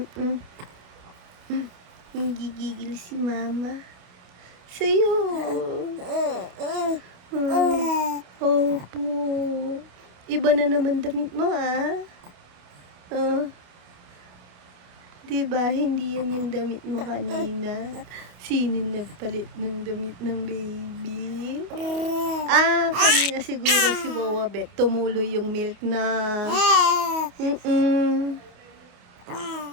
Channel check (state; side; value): late; left; 28 ms